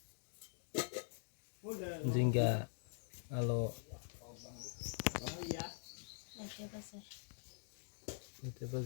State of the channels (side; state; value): right; silent; digital silence